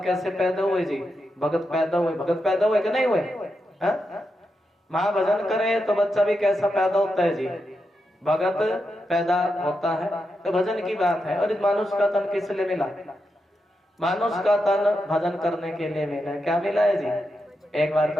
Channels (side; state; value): both; normal; correlation 0.86